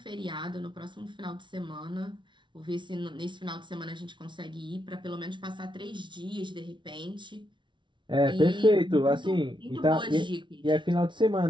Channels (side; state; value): left; late; 0.24 ms